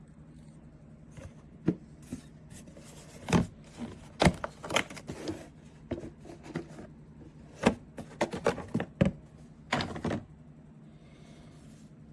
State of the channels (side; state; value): both; identical; correlation 1.00